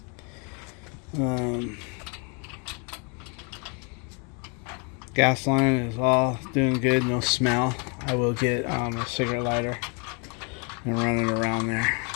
Gas line is all doing good, no smell. I will get a cigarette lighter and run it around there.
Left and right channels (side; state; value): right; quieter; 35.1 dB